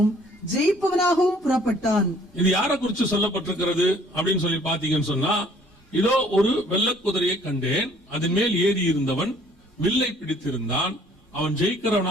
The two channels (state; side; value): normal; both; correlation 0.58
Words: ஜெயிப்பவனாகவும் புறப்பட்டான். இது யாரை குறித்து சொல்லப்பட்டிருக்கிறது அப்படின்னு சொல்லி பாத்தீங்கன்னு சொன்னா, இதோ ஒரு வெள்ளை குதிரையை கண்டேன், அதன் மேல் ஏறி இருந்தவன் வில்லை பிடித்திருந்தான், அவன்